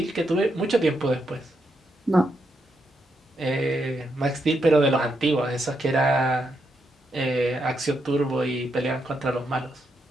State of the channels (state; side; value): normal; both; correlation 0.81